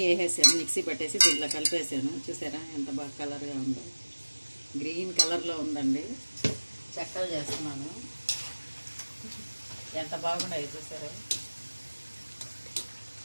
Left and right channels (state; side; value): inverted; both; correlation -1.00